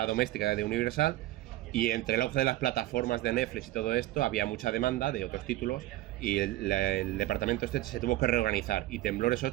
doméstica de Universal, y entre el auge de las plataformas de Netflix y todo esto, había mucha demanda de otros títulos, y el departamento se tuvo que reorganizar. Y Temblores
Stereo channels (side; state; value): left; quieter; 16.5 dB